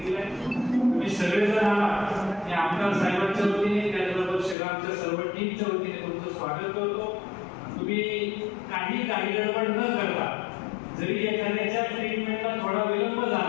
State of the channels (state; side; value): drops out; right; at 4.5 s